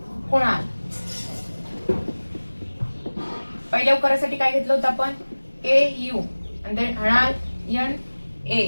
कुणाल. पहिल्या उकारासाठी काय घेतलं होतं आपण KU, देन हणाल NA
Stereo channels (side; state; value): both; inverted; correlation -1.00